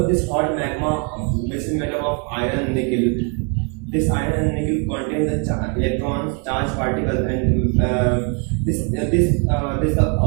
of this hot magma, which is made up of iron and nickel, this iron and nickel contains the electrons, charged particles, and this the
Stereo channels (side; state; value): left; quieter; 36.6 dB